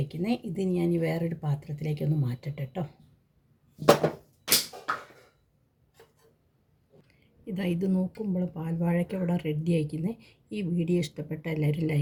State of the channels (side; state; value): both; identical; correlation 1.00